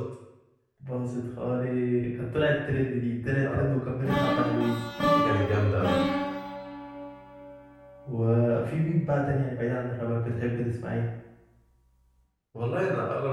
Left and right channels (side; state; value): both; identical; correlation 1.00